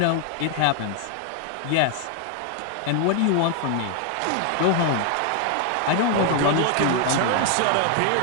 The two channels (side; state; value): both; different; correlation 0.00